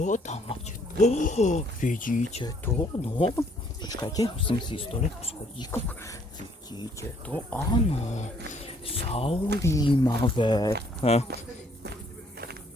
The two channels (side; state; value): both; normal; correlation 0.64